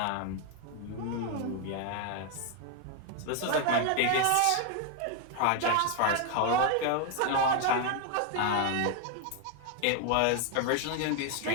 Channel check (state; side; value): different; both; correlation 0.01